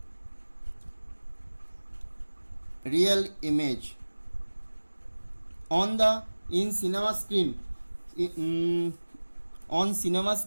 real image. In cinema screen, on cinema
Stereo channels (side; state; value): both; inverted; correlation -1.00